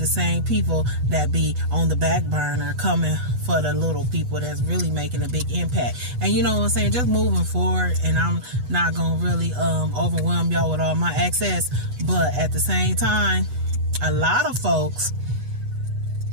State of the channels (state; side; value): late; left; 8.1 ms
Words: same people that be on the back burner coming for the little people that's really making a big impact. And you know what I'm saying, just moving forward, and I'm not gonna really overwhelm y'all with all my access, but at the same time, a lot of folks